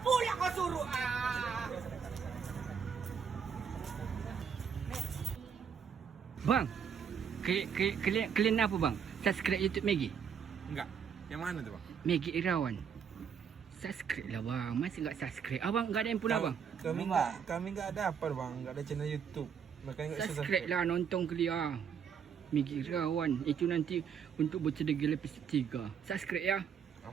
pula kau suruh. Bang, kalian apa bang? Subscribe YouTube Maggie. Enggak. Yang mana tu bang? Maggie Irawan. Subscribe lah bang. Masih enggak subscribe? Abang enggak ada yang pula bang? Kami enggak ada apa bang. Enggak ada channel YouTube. Makanya enggak bisa Subscribe lah, nonton kelia. Maggie Irawan. Itu nanti untuk bercedera episode 3. Subscribe ya.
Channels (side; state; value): left; quieter; 7.2 dB